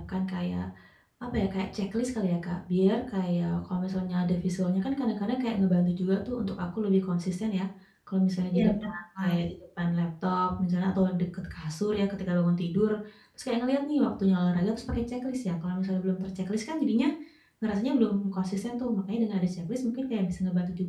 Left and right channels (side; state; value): both; identical; correlation 1.00